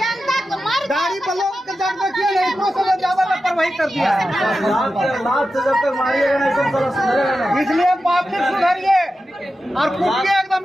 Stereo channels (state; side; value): normal; both; correlation 0.92